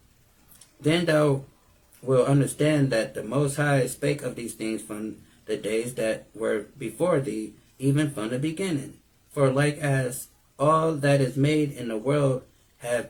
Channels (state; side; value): identical; both; correlation 1.00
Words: then thou will understand that the Most High spake of these things from the days that were before thee, even from the beginning. For like as all that is made in the world have